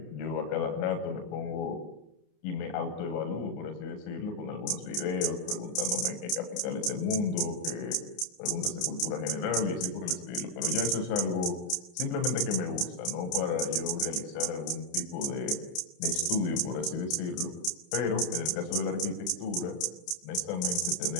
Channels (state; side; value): late; right; 29 ms